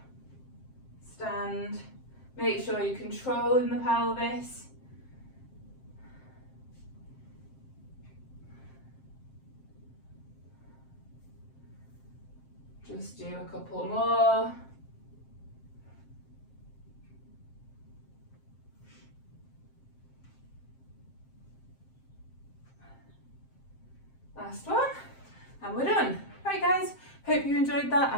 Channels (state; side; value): late; right; 7.6 ms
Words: stand. Make sure you're controlling the pelvis. Just do a couple more. Last one, and we're done. Right guys, hope you enjoyed that.